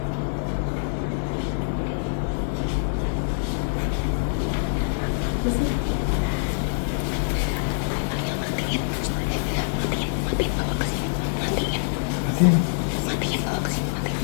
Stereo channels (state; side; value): silent; right; digital silence